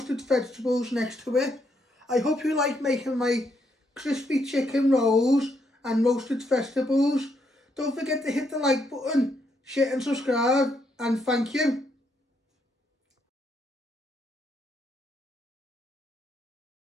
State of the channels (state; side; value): normal; both; correlation 0.76